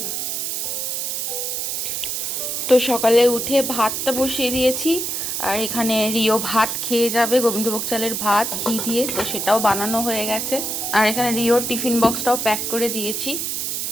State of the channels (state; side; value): noise; right; hiss, 2 dB below the sound